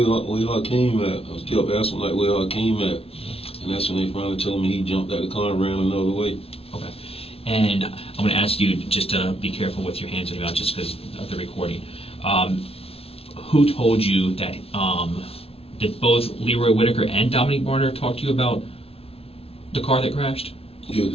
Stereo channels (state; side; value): late; right; 0.28 ms